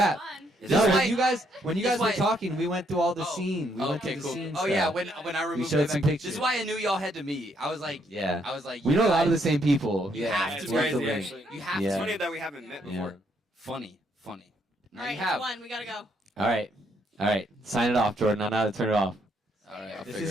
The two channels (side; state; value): both; normal; correlation 0.72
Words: Is No, this when why- you guys were why- talking, we went through all the Oh, scene. We went okay, through the cool. scene Oh yeah, stuff. when I removed showed it, some this pictures. is why I knew y'all had to meet. I was like, Yeah. you We know a lot of the guys- same people. Yeah, Yeah, it's it's What's the crazy, link? actually. You have Yeah. It's to. funny that we haven't met before. Yeah. Funny. Now All right, you have. one. We gotta go. All right. Sign it off, Jordan. I know how to turn it off. All right, I'll This figure